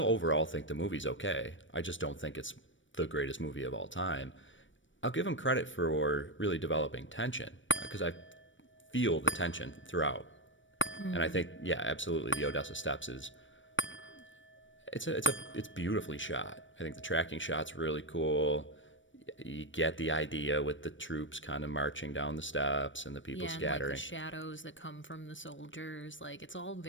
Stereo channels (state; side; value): late; right; 0.56 ms